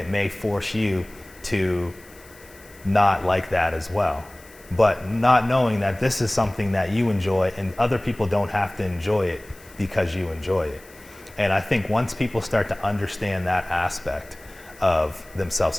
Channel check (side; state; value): left; noise; hiss, 24 dB below the sound